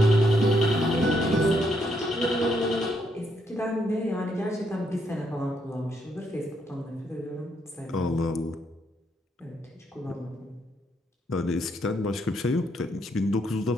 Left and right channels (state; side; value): normal; both; correlation 0.75